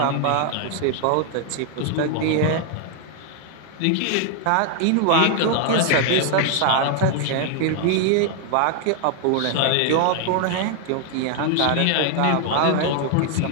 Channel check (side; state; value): both; different; correlation 0.00